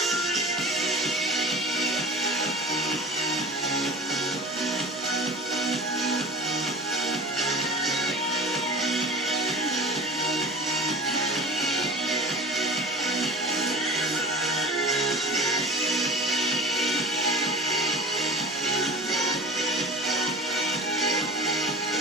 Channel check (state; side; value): normal; both; correlation 0.37